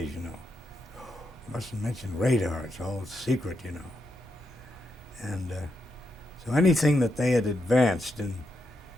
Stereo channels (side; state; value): both; normal; correlation 0.83